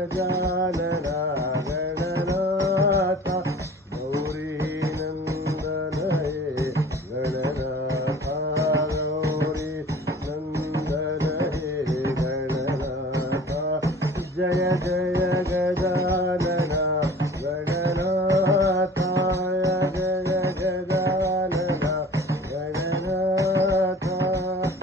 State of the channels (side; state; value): both; normal; correlation 0.45